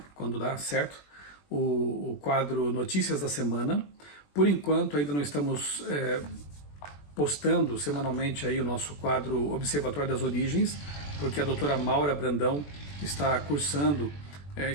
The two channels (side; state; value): right; late; 21 ms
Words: Quando dá certo, o quadro Notícias da Semana. Por enquanto ainda não estamos postando semanalmente aí o nosso quadro Observatório das Origens, porque a doutora Maura Brandão está cursando,